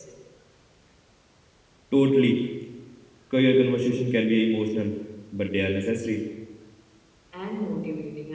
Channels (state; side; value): identical; both; correlation 1.00